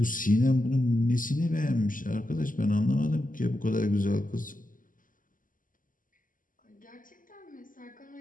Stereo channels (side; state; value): right; late; 0.39 ms